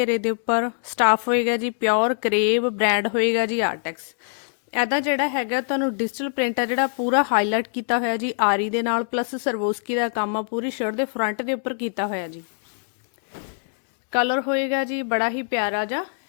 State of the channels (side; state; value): right; silent; digital silence